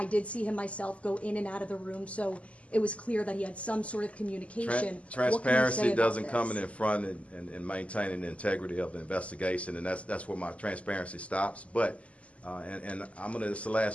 did see him myself go in and out of the room, so it was clear that he had some sort of communication. What can you say Transparency about doesn't this? come in front and maintaining the integrity of the investigation, and that's where my transparency stops. But, and this is the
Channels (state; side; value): late; right; 0.064 ms